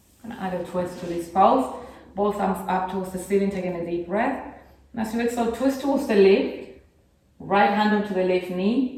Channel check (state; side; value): identical; both; correlation 1.00